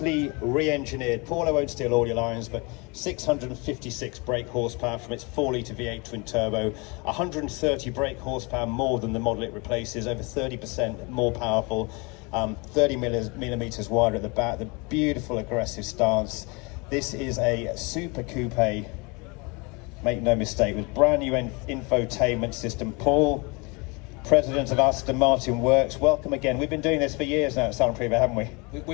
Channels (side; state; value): right; quieter; 28.9 dB